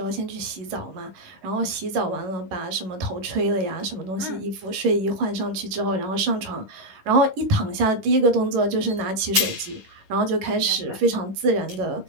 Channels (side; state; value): left; late; 10 ms